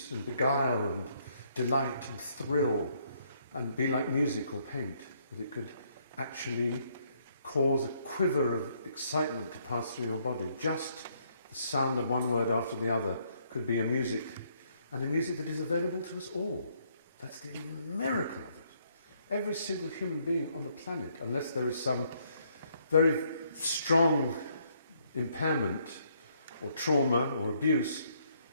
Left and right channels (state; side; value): inverted; both; correlation -0.70